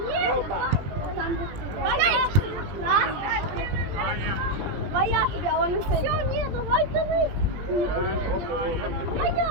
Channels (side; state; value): left; late; 20 ms